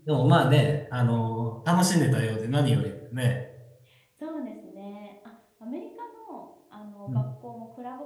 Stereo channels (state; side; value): identical; both; correlation 1.00